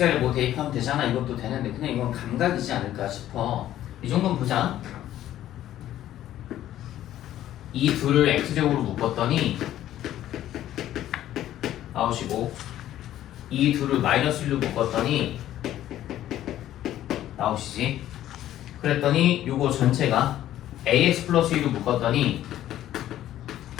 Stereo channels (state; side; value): quieter; right; 12.7 dB